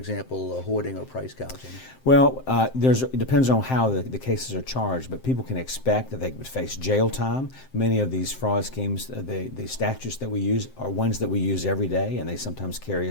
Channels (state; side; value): late; right; 7.7 ms